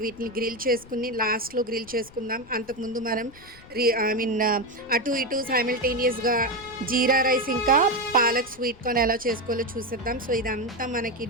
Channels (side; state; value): left; noise; rumble, 22 dB below the sound